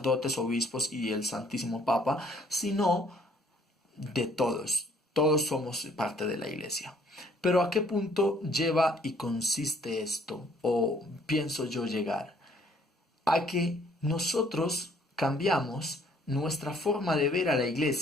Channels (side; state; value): both; normal; correlation 0.62